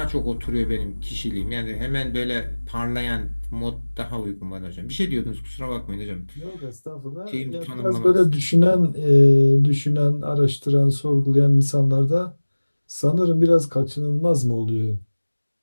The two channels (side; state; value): both; inverted; correlation -1.00